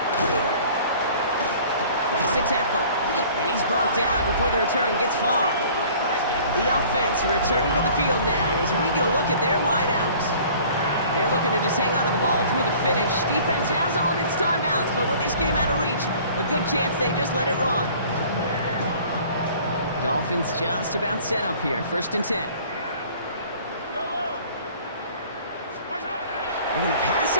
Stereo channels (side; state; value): both; inverted; correlation -0.50